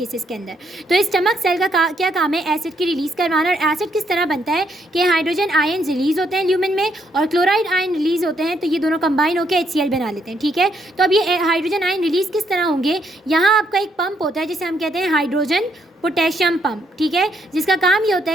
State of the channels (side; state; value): both; normal; correlation 0.73